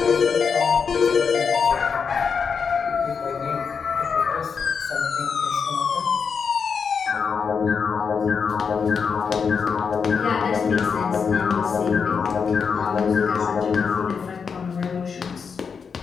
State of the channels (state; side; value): quieter; right; 6.0 dB